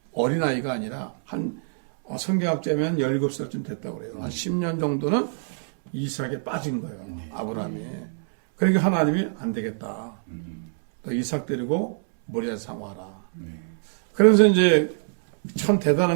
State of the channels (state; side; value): silent; left; 62 dB below the other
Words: 어린아이가 아니라 성경학자면 17살쯤 됐다고 그래요. 한 10년 정도는 이삭에 빠진 거예요. 아브라함이. 그러니까 하나님이 안 되겠다. 또 이삭 데리고 모리아 산 와라. 그래서 이제 참